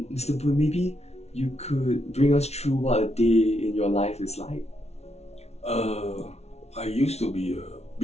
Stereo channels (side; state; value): right; late; 0.31 ms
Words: Mr. Boon, maybe you could bring us through what a day in your life is like. I used to be a